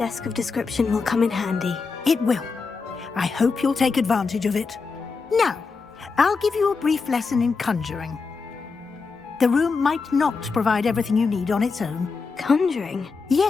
of description will come in handy. It will. I hope you'll take advantage of it. Now, I'll give you a brief lesson in conjuring. The room might not provide everything you need on its own. Conjuring?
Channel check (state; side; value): quieter; right; 4.7 dB